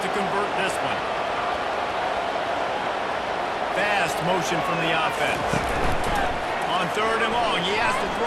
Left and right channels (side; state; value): both; identical; correlation 1.00